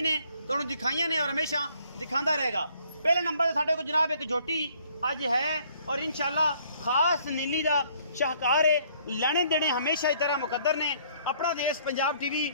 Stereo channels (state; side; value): inverted; both; correlation -0.62